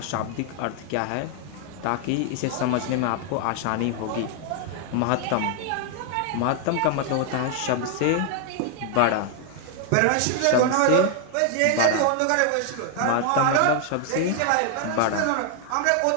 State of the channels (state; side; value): different; both; correlation 0.00